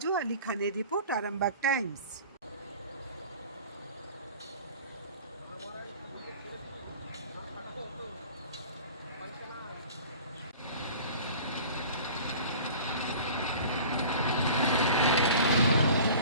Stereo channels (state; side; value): inverted; both; correlation -0.43